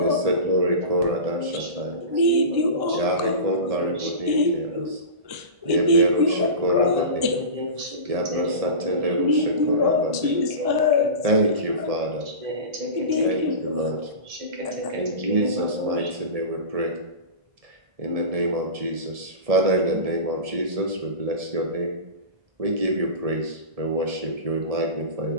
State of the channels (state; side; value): late; left; 1.7 ms